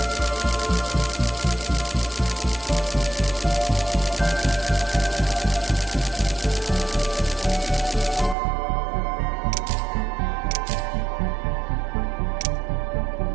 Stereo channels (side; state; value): left; drops out; at 8.3 s